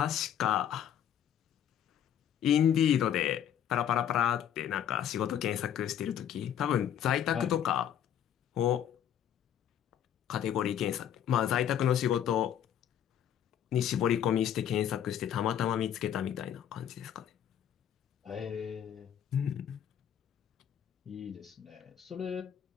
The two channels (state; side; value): quieter; right; 9.8 dB